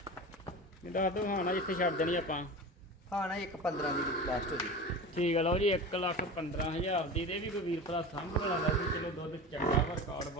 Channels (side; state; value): both; normal; correlation 0.31